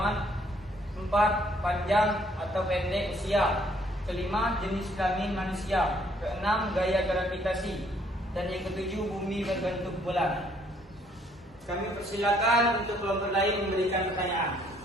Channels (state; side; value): normal; both; correlation 0.65